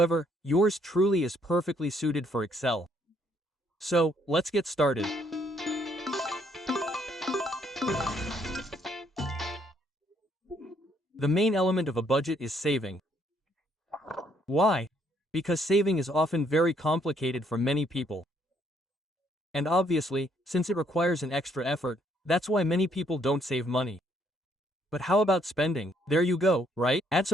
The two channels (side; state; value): both; normal; correlation 0.69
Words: yours truly is perfectly suited for Excel. So, let's get started. The main element of a budget is saving. Why? Because saving is often very complicated for many people. And obviously, since it requires an extra effort, that's why many people don't save money. But how about spending? There you go, right? Add